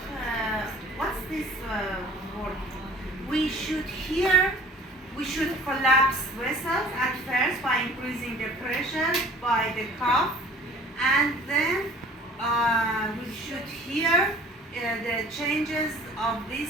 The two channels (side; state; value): both; normal; correlation 0.49